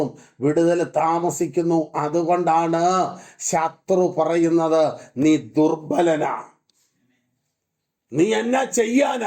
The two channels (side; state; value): both; identical; correlation 1.00